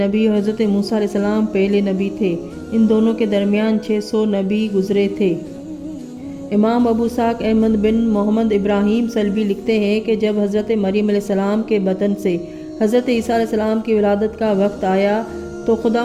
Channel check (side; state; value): both; identical; correlation 1.00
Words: और हज़रत मूसा अलैहिस्सलाम पहले नबी थे। इन दोनों के दरमियान 600 नबी गुज़रे थे। इमाम अबू इस्हाक़ अहमद बिन मोहम्मद इब्राहीम सल्बी लिखते हैं कि जब हज़रत मरियम अलैहिस्सलाम के बतन से हज़रत ईसा अलैहिस्सलाम की विलादत का वक्त आया तो